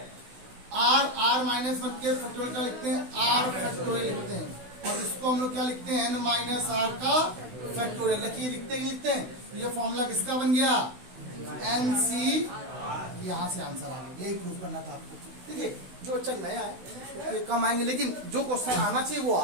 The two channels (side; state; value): left; late; 16 ms